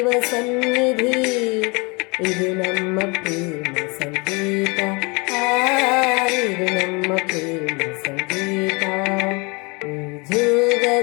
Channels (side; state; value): right; quieter; 28.9 dB